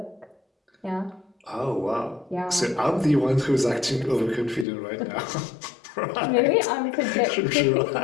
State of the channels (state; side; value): drops out; right; at 4.7 s